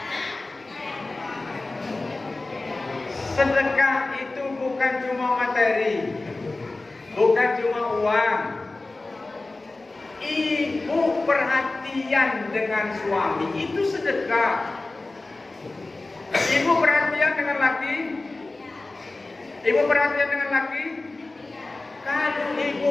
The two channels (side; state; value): right; quieter; 3.2 dB